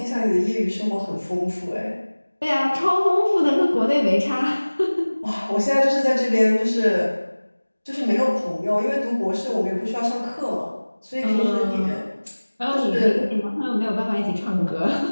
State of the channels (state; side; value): inverted; both; correlation -1.00